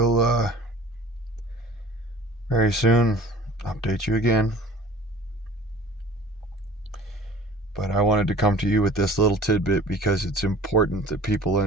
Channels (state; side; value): normal; both; correlation 0.46